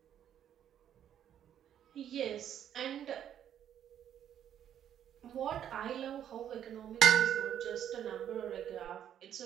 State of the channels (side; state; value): left; quieter; 10.0 dB